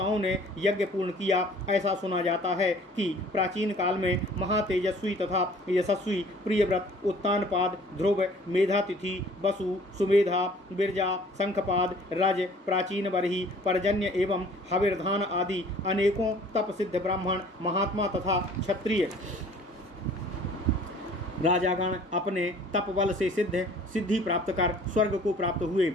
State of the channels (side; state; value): both; normal; correlation 0.52